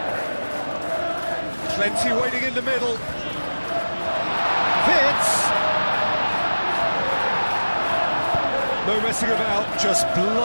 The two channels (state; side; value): inverted; both; correlation -1.00